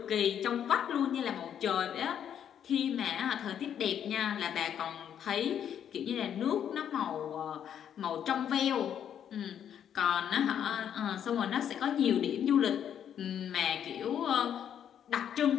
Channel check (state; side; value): quieter; right; 9.2 dB